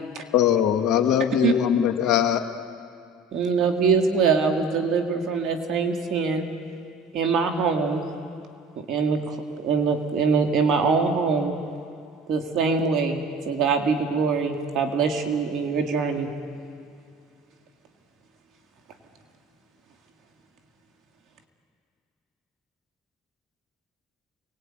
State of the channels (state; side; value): normal; both; correlation 0.40